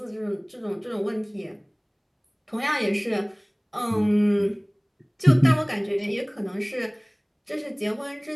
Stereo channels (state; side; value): identical; both; correlation 1.00